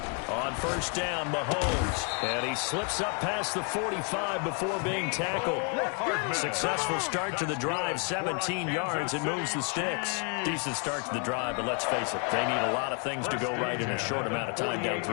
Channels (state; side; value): quieter; right; 39.2 dB